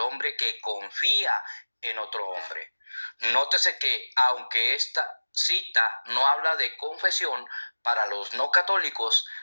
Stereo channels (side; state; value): both; inverted; correlation -1.00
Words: hombre que confía en otro hombre. Nótese que aunque esta cita no habla de confesión, para los no católicos